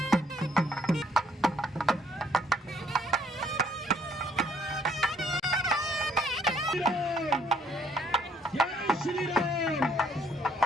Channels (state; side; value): normal; both; correlation 0.65